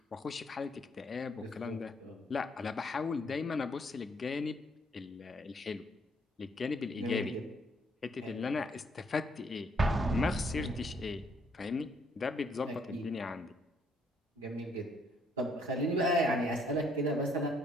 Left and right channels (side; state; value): both; normal; correlation 0.68